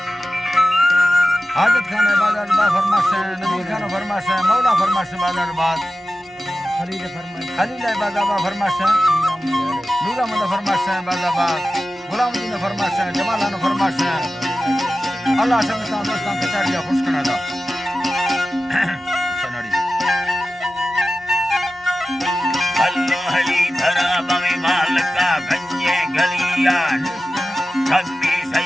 हाजत खान बाजार बाग फरमाश नबी खान फरमाश मौला फरमाश बाजार बाग खलील बाजाबा फरमाश नूरा मंद फरमाश बाजाबाग गुलामुद्दीन फरमाश जमालान फरमाश अल्लाह समझता दोस्तान के चारिया खुश करना था सनाड़ी अल्लाह हली धरा बमे मालका गंजे गलिया कभी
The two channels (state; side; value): normal; both; correlation 0.94